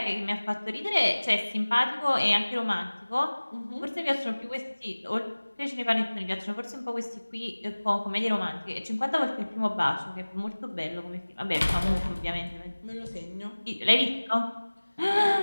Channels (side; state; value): both; inverted; correlation -1.00